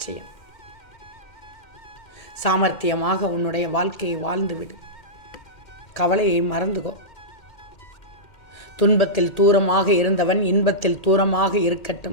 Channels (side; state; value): right; late; 1.8 ms